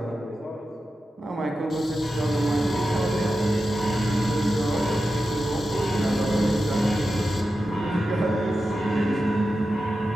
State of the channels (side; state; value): both; normal; correlation 0.91